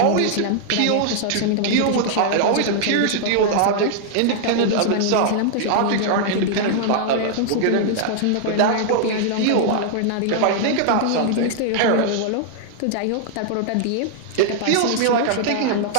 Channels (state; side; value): different; both; correlation -0.01